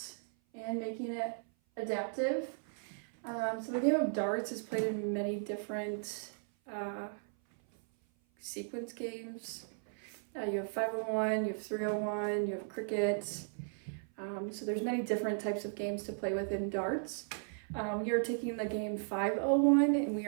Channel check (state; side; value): silent; left; 54 dB below the other